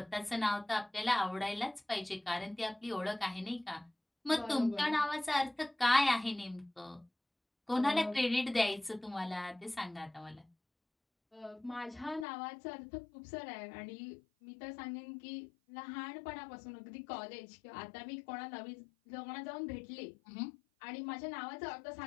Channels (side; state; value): right; drops out; at 12.2 s